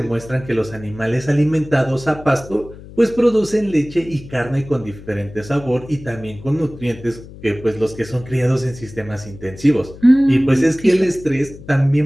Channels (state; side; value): noise; left; hum, 17 dB below the sound